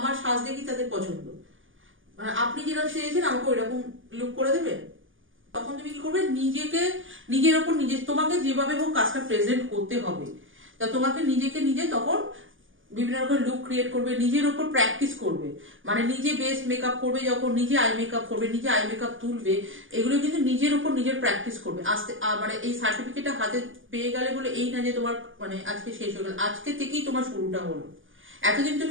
সাজ দেখি তাদের পছন্দ, মানে আপনি যেরকম সেজেছেন আমাকে ওই রকম লুক করে দেবেন। তখন তুমি কি করবে, নিজেকে নিজের ওপর তোমাকে যেভাবে হোক কাজটা প্রেজেন্ট করতে হবে। তা তোমাকে নিজেকে নিজে তখন বিভিন্ন রকম লুক ক্রিয়েট করবে, নিজের ওপর প্র্যাকটিস করবে। মানে নিজে বেস মেকআপ করবে, যখন নিজে আই মেকআপ করবে, নিজে আই মেকআপ তুলবে, এগুলো কিন্তু নিজের ওপর নিজের প্র্যাকটিস করবে। আস্তে মানে এই সার্টিফিকেটটা হাতে পেয়ে গেলে বলে এই না যে তোমার মানে আজকে শেষ হয়ে গেল, আজকে থেকেই তোমার শুরুটা হলো। এতদিন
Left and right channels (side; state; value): left; late; 0.58 ms